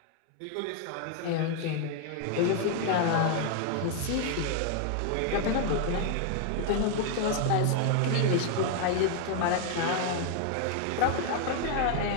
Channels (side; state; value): both; different; correlation 0.00